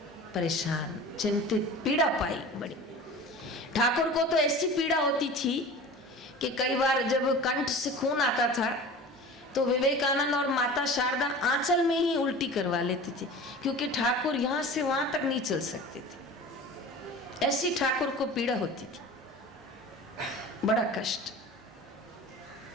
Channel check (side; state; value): both; normal; correlation 0.38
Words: परेशान, चिंतित, पीड़ा पाई बड़ी। ठाकुर को तो ऐसी पीड़ा होती थी कि कई बार जब कंठ से खून आता था तो विवेकानंद और माता शारदा आंचल में ही उल्टी करवा लेते थे, क्योंकि ठाकुर यहाँ से वहां तक नहीं चल सकते थे। ऐसी ठाकुर को पीड़ा होती थी, बड़ा कष्ट।